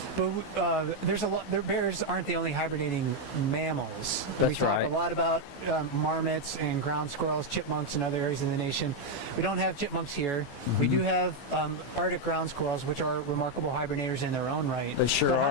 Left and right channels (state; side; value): late; right; 16 ms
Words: There's a lot. Bears aren't the only hibernating mammals. We That's talk right. a lot about marmots and ground squirrels, chipmunks in other areas of the nation. We don't have chipmunks here. We do have Arctic ground squirrels, which are remarkable hibernators in their own right. They sure but